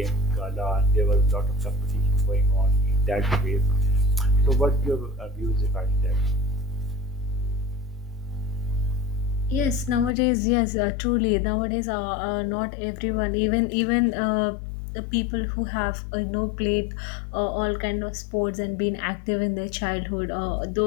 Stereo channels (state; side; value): drops out; right; at 10.1 s